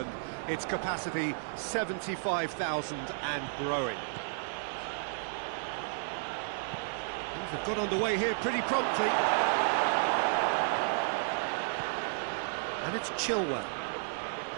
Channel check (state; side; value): silent; left; digital silence